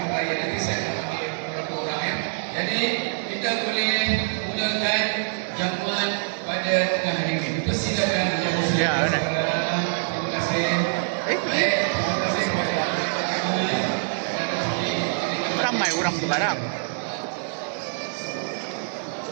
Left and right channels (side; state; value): left; silent; digital silence